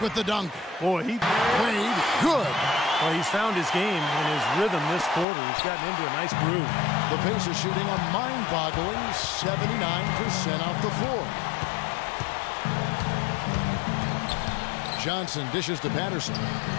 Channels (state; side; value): drops out; right; at 5.2 s